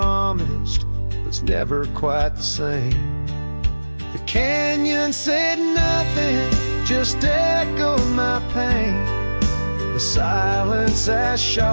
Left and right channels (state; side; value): inverted; both; correlation -1.00